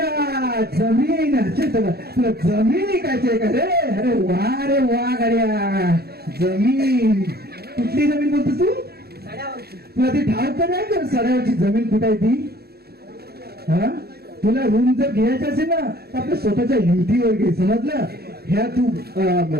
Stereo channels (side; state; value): left; late; 0.46 ms